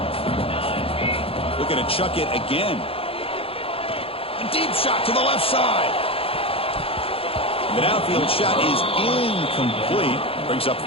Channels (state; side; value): late; right; 0.27 ms